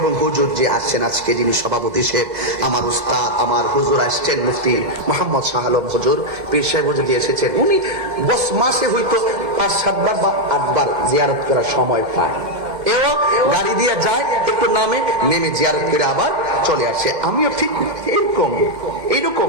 হুজুর যে আসছেন আজকে, যিনি সভাপতি সাহেব, আমার উস্তাদ, আমার হুজুর আসছেন মুফতি মোহাম্মদ শাহ আলম হুজুর, পীর সাহেব হুজুর দিয়ে এসেছেন। উনি বস মাসে হয়তো 5-7 বার বা 8 বার জিয়ারত করার সময় পায়। এও গাড়ি দিয়ে যায়, একটু নেমে জিয়ারত করে আবার চলে আসে। আমিও ঠিক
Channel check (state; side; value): late; left; 2.1 ms